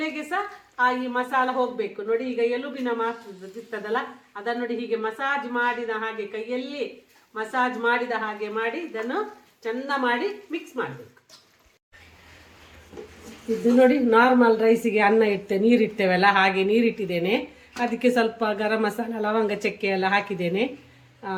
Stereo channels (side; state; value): both; identical; correlation 1.00